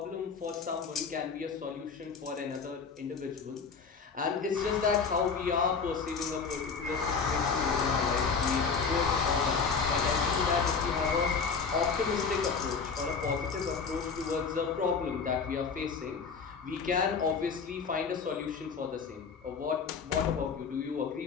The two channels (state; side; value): quieter; right; 5.4 dB